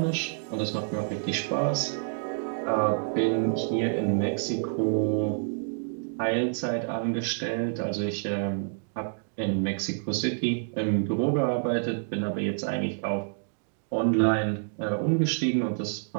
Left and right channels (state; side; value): silent; left; digital silence